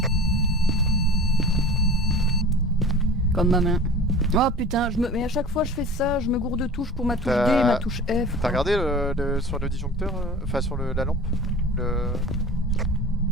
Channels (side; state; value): both; normal; correlation 0.38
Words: Comme ma main. Oh putain, mais à chaque fois je fais ça, je me gourde de touche pour ma touche D T'as- et ma touche F. T'as regardé sur le disjoncteur, enfin sur la lampe Non,